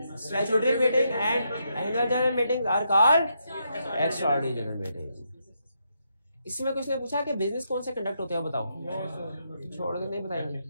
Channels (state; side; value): inverted; both; correlation -0.80